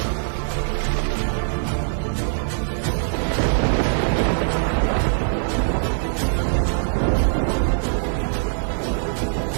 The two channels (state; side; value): silent; left; 57 dB below the other